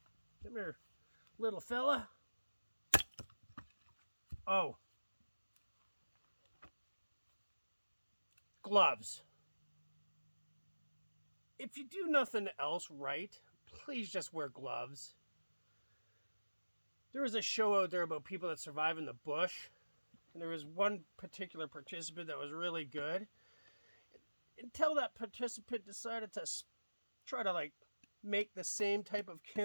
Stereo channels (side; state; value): both; inverted; correlation -1.00